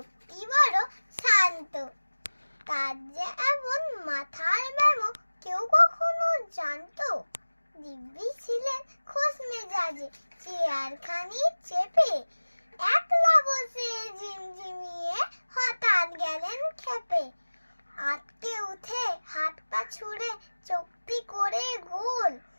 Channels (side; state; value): both; inverted; correlation -1.00